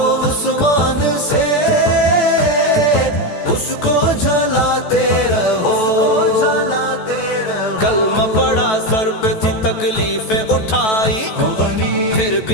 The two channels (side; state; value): right; late; 14 ms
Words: عثمان سے اس کو جلاتے رہو، کلمہ پڑا سر پہ تھی تکلیفیں اٹھائی، پھر